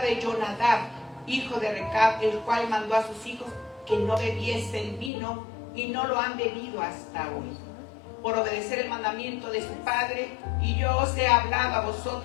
Jonadab, hijo de Recab, el cual mandó a sus hijos que no bebiesen vino, y no lo han bebido hasta hoy, por obedecer el mandamiento de su padre. Y yo os he hablado a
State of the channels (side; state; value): right; drops out; at 5.1 s